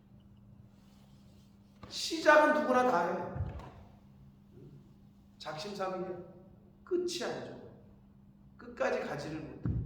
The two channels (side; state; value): both; identical; correlation 1.00